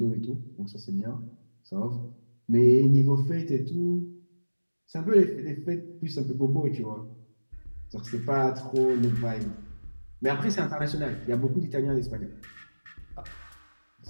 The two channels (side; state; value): both; inverted; correlation -1.00